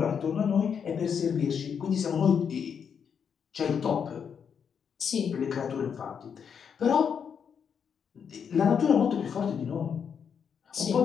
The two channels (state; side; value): quieter; right; 7.1 dB